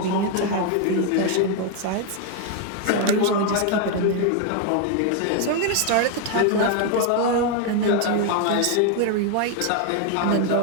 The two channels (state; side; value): different; both; correlation 0.01